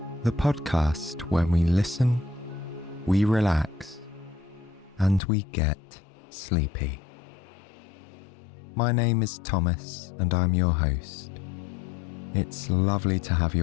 the podcast where we listen, we relax, and we get sleepy. My name is Thomas and I'm your host. It's lovely to have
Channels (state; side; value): drops out; right; at 5.2 s